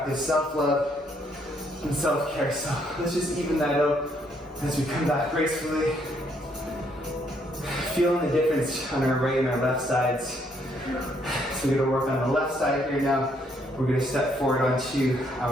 self-love and self-care. So let's just even that out as we come back gracefully. Feeling the difference on our right and our left sides. So we're gonna work on the left side here now. We're gonna step forward onto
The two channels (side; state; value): both; normal; correlation 0.70